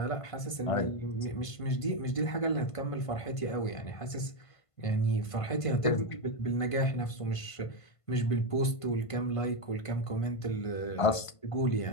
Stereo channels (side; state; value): right; late; 1.5 ms